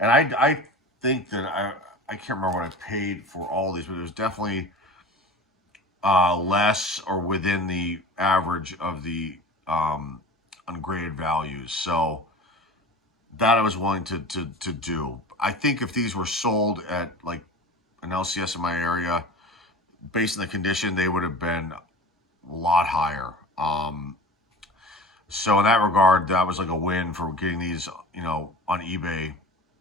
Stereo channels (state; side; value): normal; both; correlation 0.36